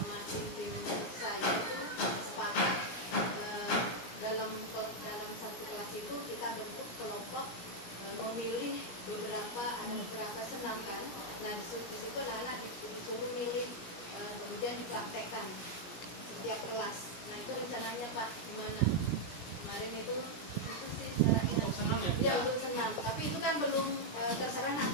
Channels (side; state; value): right; late; 17 ms